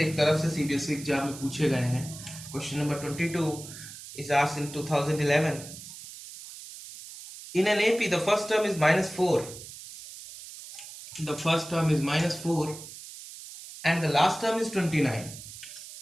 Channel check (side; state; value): right; noise; hiss, 14 dB below the sound